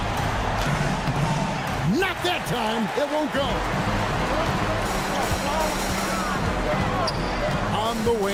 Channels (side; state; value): both; identical; correlation 1.00